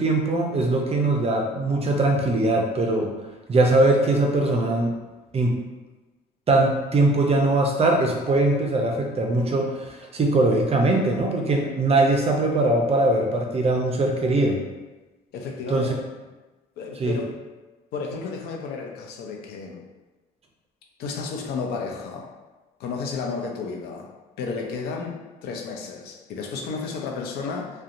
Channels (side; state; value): both; normal; correlation 0.52